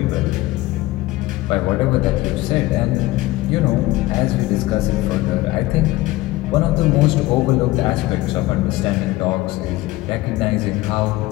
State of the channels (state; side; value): quieter; right; 18.4 dB